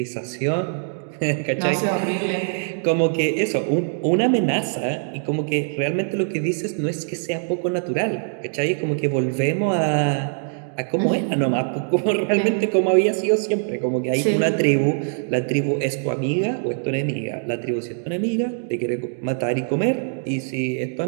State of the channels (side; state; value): left; silent; digital silence